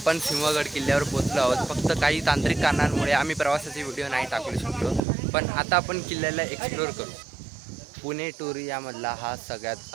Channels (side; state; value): left; drops out; at 5.0 s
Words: सिंहगड किल्ल्यावर पोहोचलो आहोत. फक्त काही तांत्रिक कारणांमुळे आम्ही प्रवासाचे व्हिडिओ नाही टाकू शकलो. पण आता आपण किल्ल्याला एक्सप्लोअर करू. पुणे टूर यामधला हा सगळ्यात